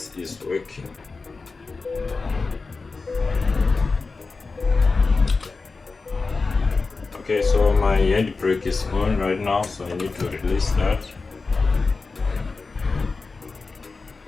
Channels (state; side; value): quieter; right; 4.1 dB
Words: is working. Okay, so my handbrake is on right now, so I need to release that.